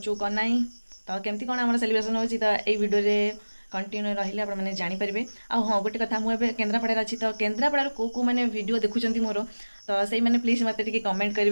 कौन ना तो केमती कौन आम सेलिब्रेशन होची तो ये वीडियो रे कंटिन्यू रहिले आप मैंने जानीपारे। आ हाँ गोटे कथा मुझे केन्द्रापड़ा अच्छी तो केन्द्रापड़ा को मैंने वीडियो देखुं मोर तो से मैंने प्लीज मत कमेंट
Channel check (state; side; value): inverted; both; correlation -1.00